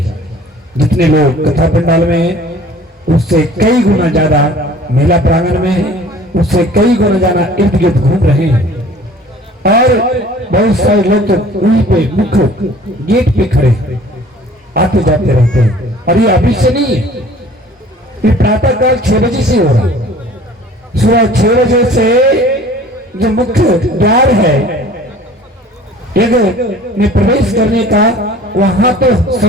जितने लोग कथा पंडाल में हैं उससे कई गुना ज्यादा मेला प्रांगण में है, उससे कई गुना ज्यादा इर्द गिर्द घूम रहे हैं। और बहुत सारे लोग तो वहीं पे मुख्य गेट पे खड़े आते जाते रहते हैं। और ये अभी से नहीं है, ये प्रातः काल 6 बजे से हो रहा है। सुबह 6 बजे से जो मुख्य द्वार है यज्ञ में प्रवेश करने का, वहां तो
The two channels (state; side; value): normal; both; correlation 0.49